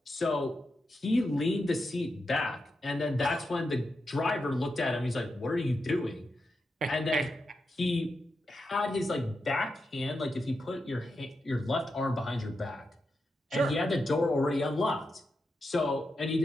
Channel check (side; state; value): both; normal; correlation 0.87